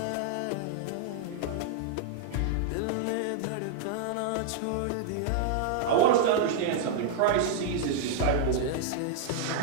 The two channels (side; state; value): both; different; correlation -0.01